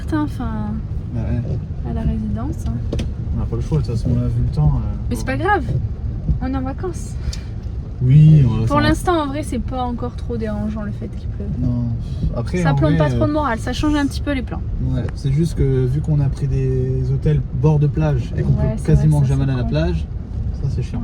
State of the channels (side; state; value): both; identical; correlation 1.00